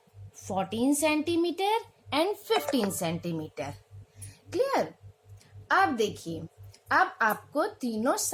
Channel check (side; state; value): both; identical; correlation 1.00